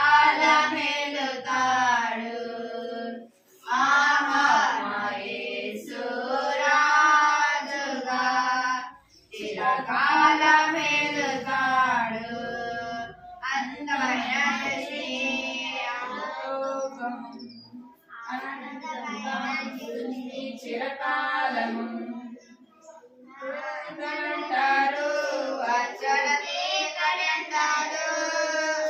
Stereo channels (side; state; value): both; identical; correlation 1.00